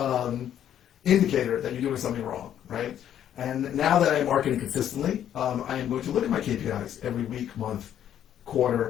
indicator that you're doing something wrong, right? And now that I'm marketing consistently, I am going to look at my KPIs every week, month,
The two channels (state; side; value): quieter; right; 10.3 dB